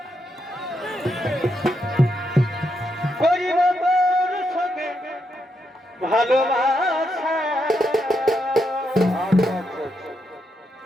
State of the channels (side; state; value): both; normal; correlation 0.81